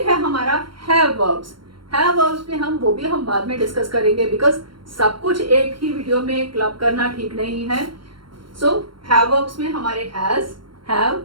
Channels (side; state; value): left; late; 0.73 ms